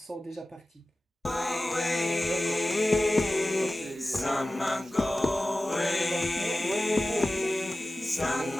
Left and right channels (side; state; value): both; normal; correlation 0.95